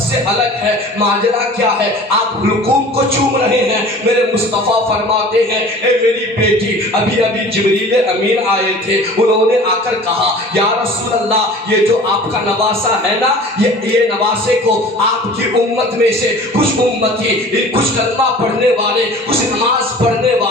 سے الگ ہے۔ ماجرا کیا ہے؟ آپ حلقوم کو چوم رہے ہیں۔ میرے مصطفیٰ فرماتے ہیں، اے میری بیٹی، ابھی جبریل امین آئے تھے، انہوں نے آ کر کہا، یا رسول اللہ، یہ جو آپ کا نواسا ہے نا، یہ نواسے کو آپ کی امت میں سے کچھ امتی، کچھ کلمہ پڑھنے والے، کچھ نماز پڑھنے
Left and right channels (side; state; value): both; normal; correlation 0.44